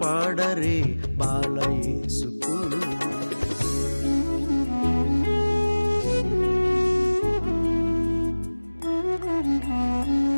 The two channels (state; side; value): inverted; both; correlation -1.00